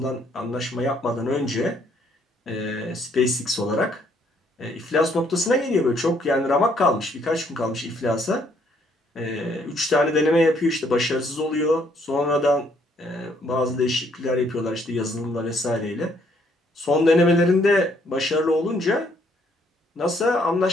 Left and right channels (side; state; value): both; normal; correlation 0.68